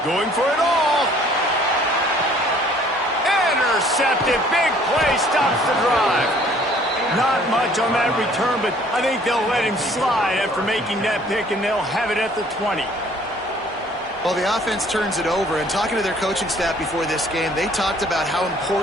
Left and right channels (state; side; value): normal; both; correlation 0.57